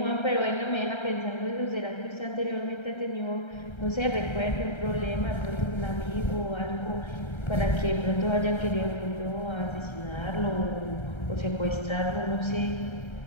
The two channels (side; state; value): right; late; 1.3 ms